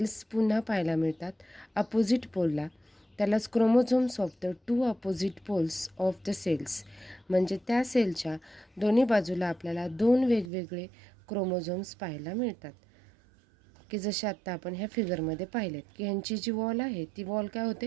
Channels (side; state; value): left; drops out; at 10.5 s